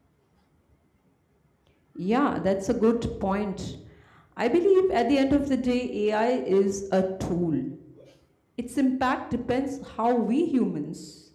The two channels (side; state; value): both; identical; correlation 1.00